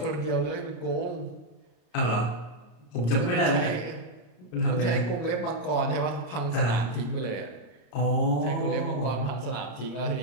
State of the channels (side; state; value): right; late; 34 ms